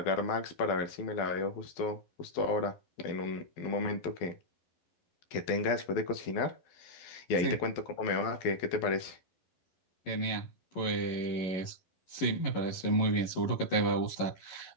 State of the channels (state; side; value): late; right; 11 ms